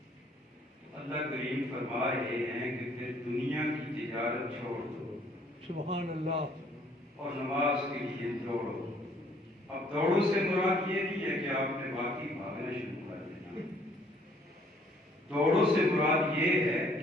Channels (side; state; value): both; normal; correlation 0.62